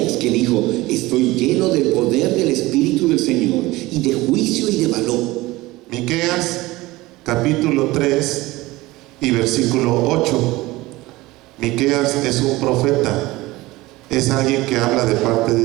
que dijo, estoy lleno del poder del Espíritu del Señor, y de juicio y de valor. Miqueas, capítulo capítulo 3 y versículo 8. Miqueas es un profeta, es alguien que habla de parte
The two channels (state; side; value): quieter; left; 19.6 dB